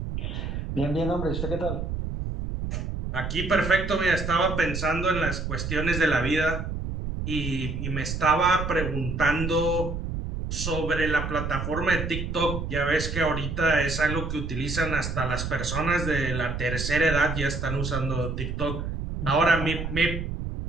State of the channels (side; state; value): right; noise; rumble, 4 dB below the sound